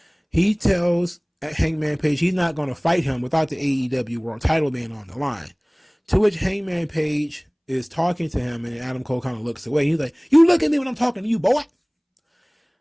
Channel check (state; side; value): identical; both; correlation 1.00